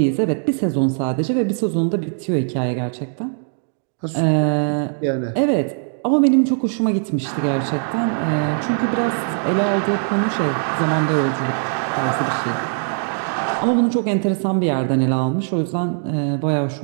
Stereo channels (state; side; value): silent; left; 57 dB below the other